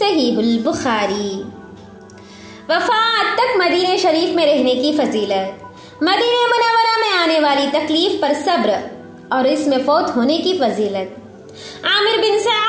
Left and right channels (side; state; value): both; identical; correlation 1.00